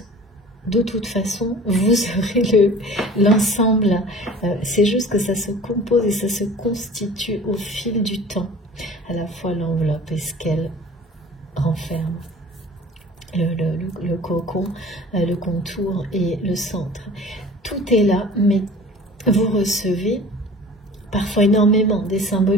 De toute façon, vous aurez l'ensemble. C'est juste que ça se compose et ça se constitue au fil du temps. À la fois l'enveloppe et ce qu'elle renferme. Le cocon, le contour et le centre. Tout est là, mais vous recevez parfois énormément des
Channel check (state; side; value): normal; both; correlation 0.44